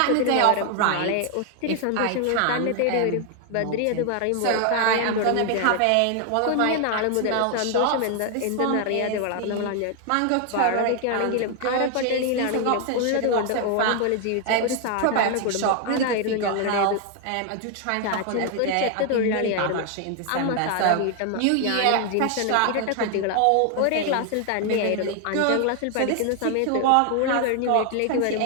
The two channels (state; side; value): different; both; correlation 0.00